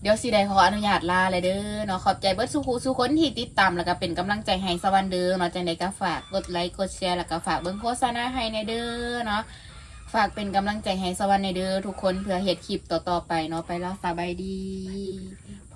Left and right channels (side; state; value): both; identical; correlation 1.00